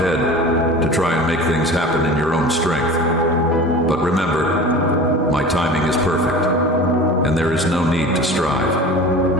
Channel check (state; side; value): normal; both; correlation 0.37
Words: to try and make things happen in your own strength. But remember, my timing is perfect, and there is no need to